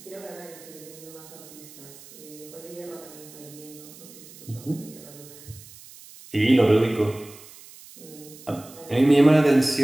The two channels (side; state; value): right; noise; hiss, 19 dB below the sound